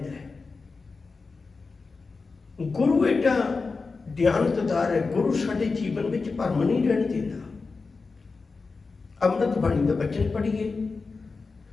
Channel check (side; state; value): right; quieter; 4.3 dB